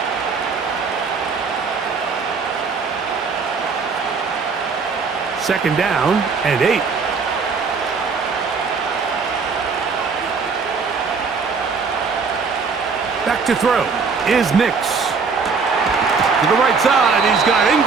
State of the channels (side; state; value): left; quieter; 5.0 dB